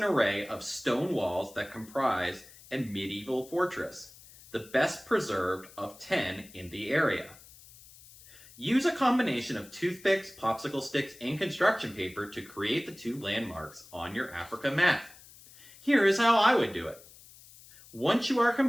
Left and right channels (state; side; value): noise; left; hiss, 21 dB below the sound